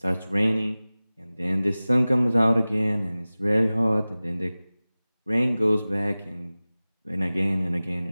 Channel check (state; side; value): inverted; both; correlation -0.98